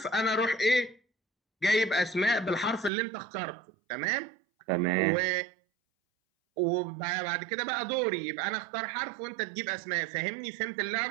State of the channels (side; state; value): left; drops out; at 2.9 s